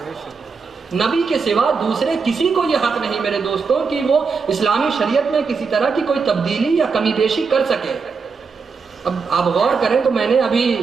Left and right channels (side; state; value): left; quieter; 5.1 dB